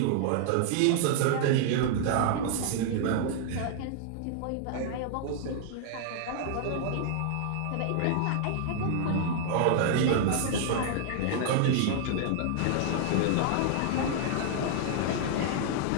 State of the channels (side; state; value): both; different; correlation -0.01